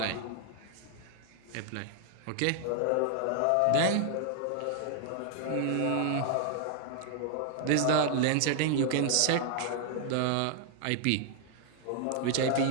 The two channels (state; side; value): different; both; correlation 0.00